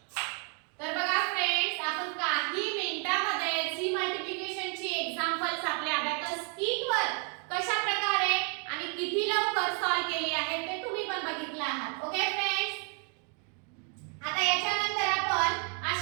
तर बघा फ्रेंड्स, आपण काही मिनिटांमध्ये जी मल्टिप्लिकेशनची एक्झाम्पल्स आपल्या अबॅकस कीटवर कशा प्रकारे आणि किती लवकर सॉल्व केली आहे ते तुम्ही पण बघितलं आहात. ओके फ्रेंड्स, आता याच्यानंतर आपण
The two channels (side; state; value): left; quieter; 38.5 dB